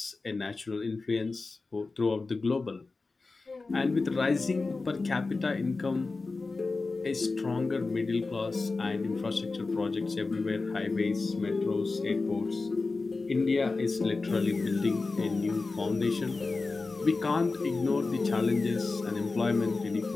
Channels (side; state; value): right; quieter; 3.8 dB